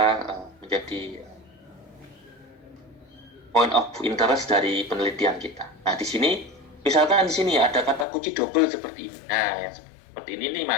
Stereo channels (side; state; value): right; drops out; at 8.1 s